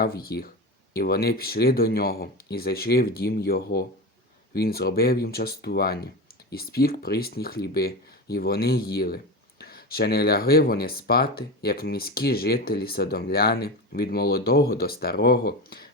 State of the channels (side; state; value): both; normal; correlation 0.24